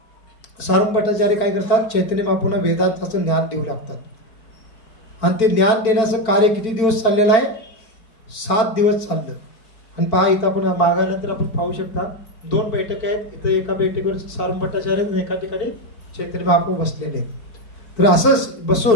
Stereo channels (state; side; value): late; right; 4.5 ms